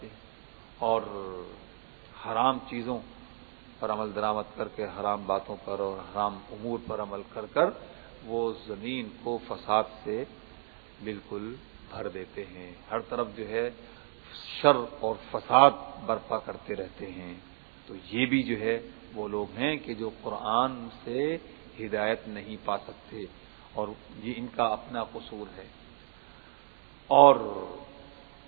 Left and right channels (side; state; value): left; silent; 56 dB below the other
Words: ہیں اور حرام چیزوں پر عمل درآمد کر کے حرام باتوں پر اور حرام امور پر عمل کر کر وہ زمین کو فساد سے بالکل بھر دیتے ہیں، ہر طرف جو ہے شر اور فساد برپا کرتے رہتے ہیں۔ تو یہ بھی جو ہے وہ لوگ ہیں کہ جو قرآن سے ہدایت نہیں پا سکتے، اور یہ ان کا اپنا قصور ہے۔ اور